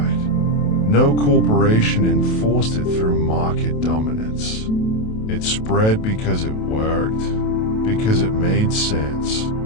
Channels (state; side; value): late; right; 28 ms